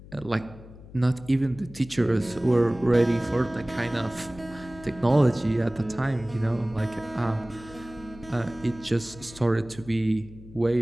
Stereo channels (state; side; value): noise; left; hum, 18 dB below the sound